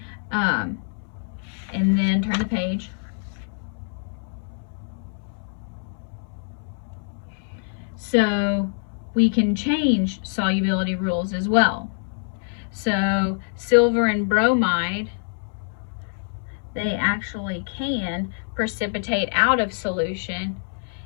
And then turn the page. So we can change solubility rules as well. So silver and bromide, they actually can precipitate out of solution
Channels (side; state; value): right; silent; 62 dB below the other